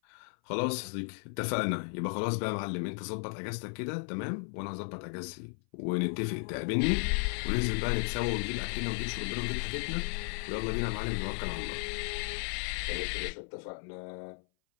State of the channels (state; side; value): silent; right; 55 dB below the other